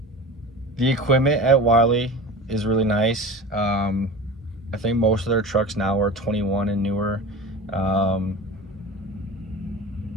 equipment at Wylie is really nice. I think most of their trucks now are 21 and newer.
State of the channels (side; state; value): both; normal; correlation 0.33